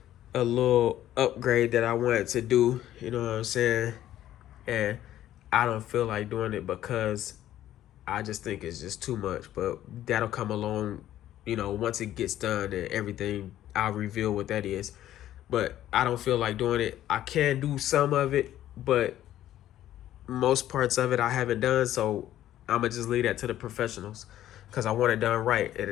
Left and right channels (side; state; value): right; quieter; 12.7 dB